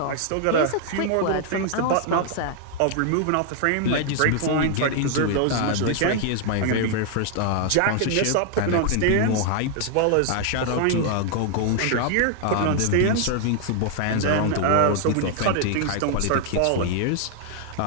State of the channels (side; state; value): both; different; correlation 0.00